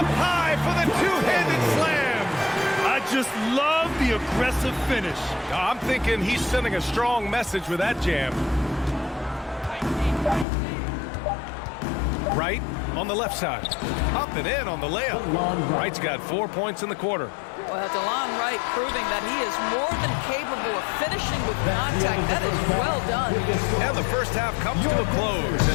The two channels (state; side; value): drops out; right; at 10.5 s